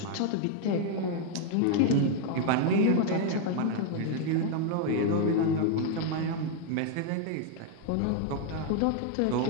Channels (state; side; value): different; both; correlation 0.00